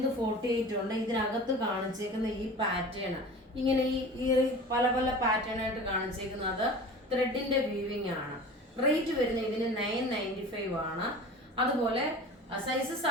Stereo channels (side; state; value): both; normal; correlation 0.38